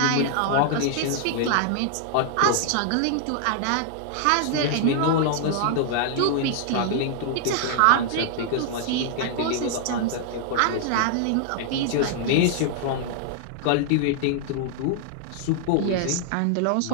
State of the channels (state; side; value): different; both; correlation -0.01